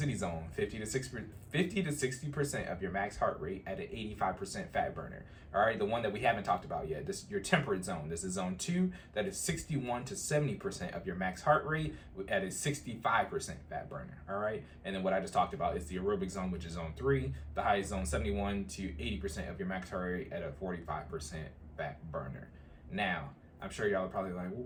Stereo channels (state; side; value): identical; both; correlation 1.00